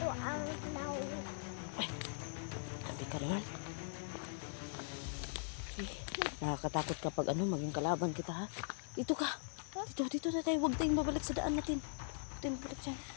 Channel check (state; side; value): silent; right; digital silence